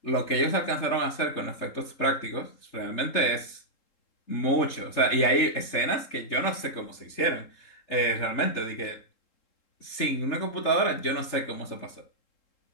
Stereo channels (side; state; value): right; late; 3.7 ms